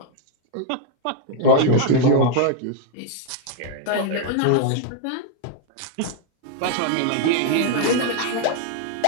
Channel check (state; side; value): different; both; correlation 0.00